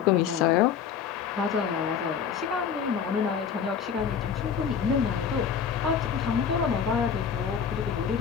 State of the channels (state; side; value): quieter; right; 7.3 dB